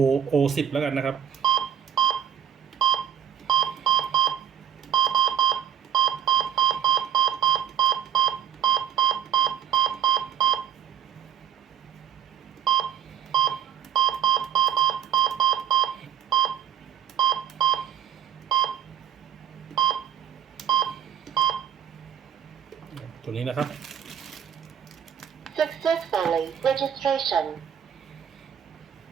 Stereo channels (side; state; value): left; quieter; 8.9 dB